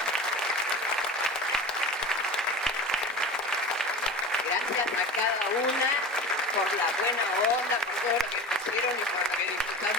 Gracias a cada una por la buena onda, por todo lo que pusieron y por lo que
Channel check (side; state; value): both; normal; correlation 0.33